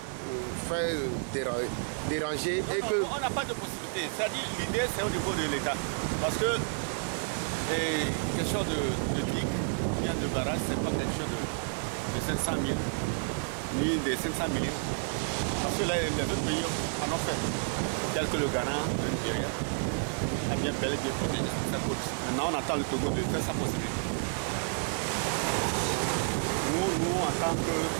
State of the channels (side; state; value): left; silent; 57 dB below the other